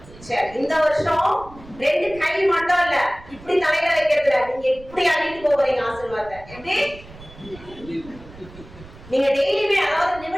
சரி, இந்த வருஷம் 2 கை மட்டும் இல்ல, இப்படி தலையில வைக்கிறதுல நீங்க இப்படி அள்ளிட்டு போறீங்க ஆசீர்வாதத்தை. எப்படி? நீங்க டெய்லியுமே, அதாவது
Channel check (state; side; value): noise; right; rumble, 20 dB below the sound